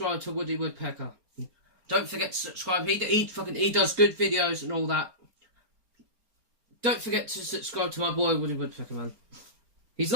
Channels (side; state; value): left; late; 4.3 ms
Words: to Woody Woodpecker. Don't forget to subscribe. He does good videos and all that. Don't forget to subscribe to my boy Woody Woodpecker, man. He's